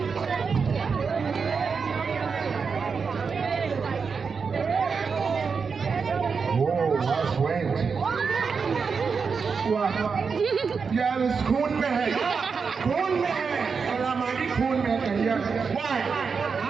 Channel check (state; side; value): quieter; left; 5.5 dB